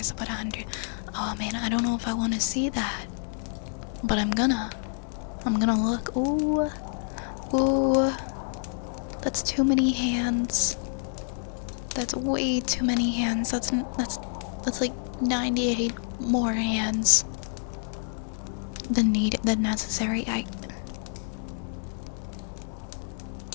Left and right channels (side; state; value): right; silent; digital silence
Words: about 100. Oh man, I don't know if I want to see that, but I'm gonna look. Ooh, ooh, that's too many hands. That's way too many hands. That's like 98 more hands than necessary.